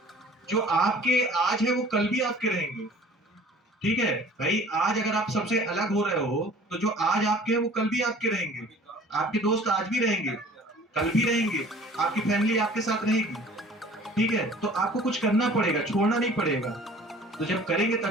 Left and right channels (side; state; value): both; normal; correlation 0.49